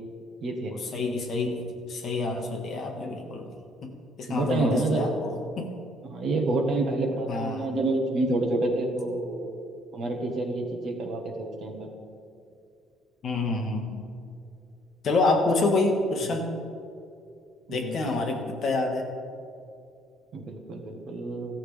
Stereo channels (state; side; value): normal; both; correlation 0.64